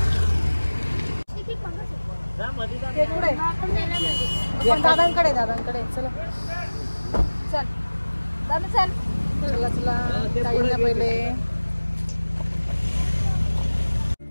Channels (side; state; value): both; inverted; correlation -1.00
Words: दादांकडे दादांकडे. चला चल दादा चल. चला चला. जायला पहिले.